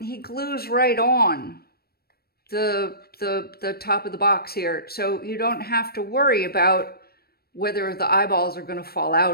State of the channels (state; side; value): late; right; 0.45 ms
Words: glues right on the top of the box here, so you don't have to worry about whether the eyeballs are going to fall